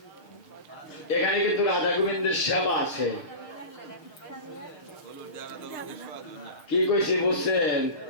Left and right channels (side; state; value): right; late; 6.5 ms